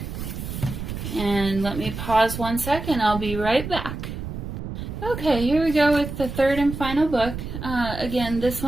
and let me pause 1 second. I'll be right back. Okay, here we go with the third and final book. Again, this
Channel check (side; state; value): right; noise; rumble, 7 dB below the sound